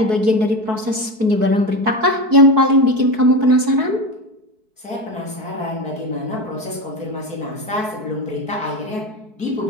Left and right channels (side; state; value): left; late; 4.6 ms